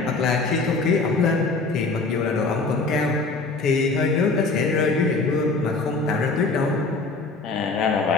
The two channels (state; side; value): quieter; right; 3.8 dB